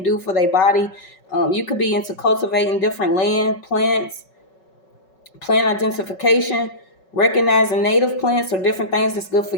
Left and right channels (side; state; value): right; late; 5.3 ms